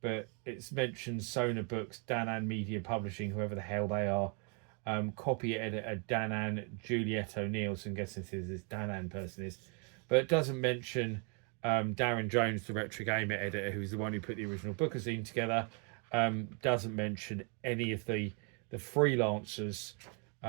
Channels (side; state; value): left; quieter; 37.0 dB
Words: it's mentioned Sona Books, Danan Media Publishing, whoever the hell they are, copy editor Danan Juliet O'Neill, so I'm guessing this Danan person is, but it doesn't mention Darren Jones, the Retro Gamer editor, who's the one who put the original bookazine together. Doesn't mention any of the freelancers